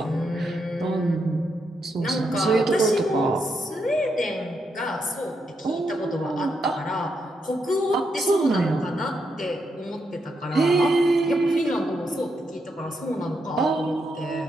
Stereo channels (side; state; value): both; normal; correlation 0.81